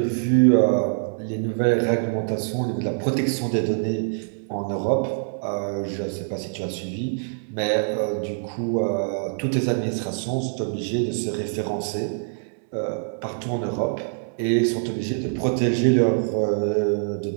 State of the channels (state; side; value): silent; left; digital silence